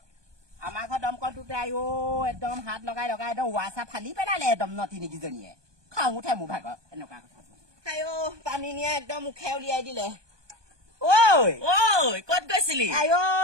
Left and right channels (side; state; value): left; late; 1.2 ms